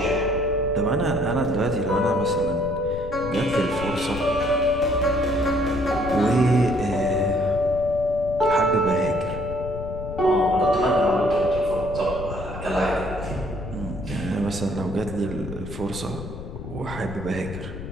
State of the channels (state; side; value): noise; left; rumble, 10 dB below the sound